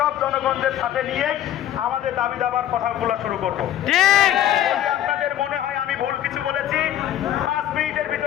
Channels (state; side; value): quieter; right; 11.8 dB